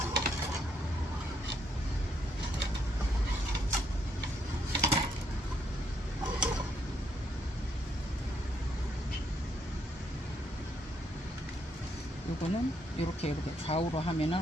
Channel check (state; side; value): normal; both; correlation 0.74